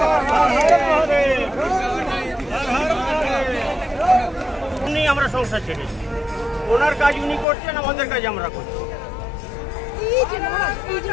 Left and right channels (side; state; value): right; drops out; at 7.5 s